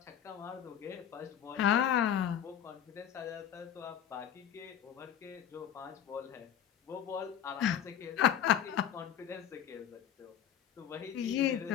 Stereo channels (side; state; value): right; quieter; 9.7 dB